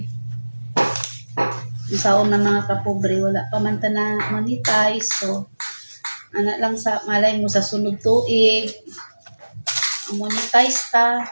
saon na mga kapobre wala pa man ta na monetize so ana lang sa malay mo sa sunod tuig monetize ta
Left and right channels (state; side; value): inverted; both; correlation -1.00